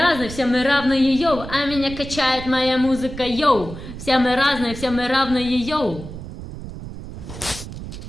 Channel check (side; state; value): right; noise; rumble, 11 dB below the sound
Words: все мы равные, йоу. А меня качает моя музыка, йоу. Все мы разные, все мы равные, йоу.